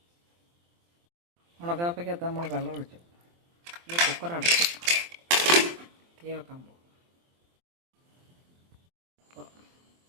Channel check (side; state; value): left; late; 23 ms